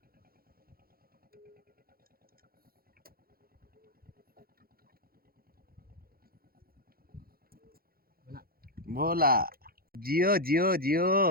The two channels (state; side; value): late; left; 0.43 ms